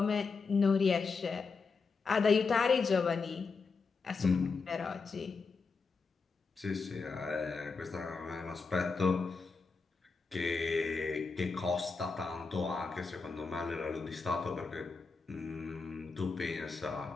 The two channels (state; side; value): quieter; right; 4.6 dB